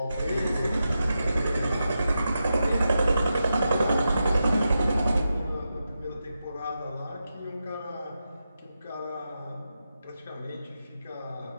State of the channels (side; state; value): both; inverted; correlation -0.88